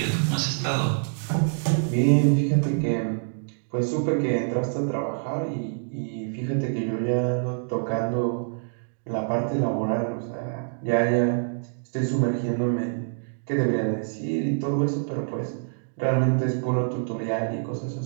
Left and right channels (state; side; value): silent; left; digital silence